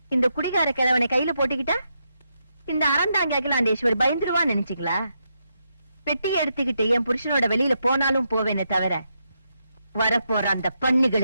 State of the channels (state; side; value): inverted; both; correlation -0.82